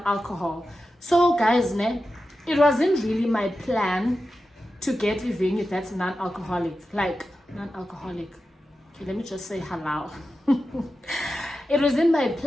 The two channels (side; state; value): both; normal; correlation 0.91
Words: so guys, it wasn't really my plan to get a venue that's non-alcoholic. Like non-alcoholic. Okay, let me just say halal. It wasn't my